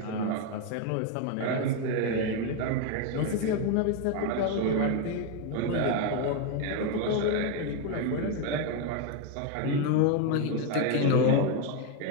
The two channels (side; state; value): both; different; correlation 0.01